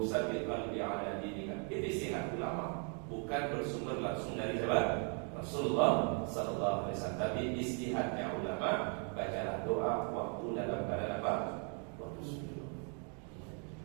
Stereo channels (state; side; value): quieter; left; 39.6 dB